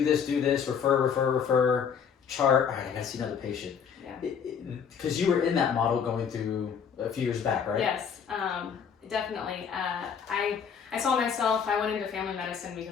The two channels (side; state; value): right; quieter; 7.1 dB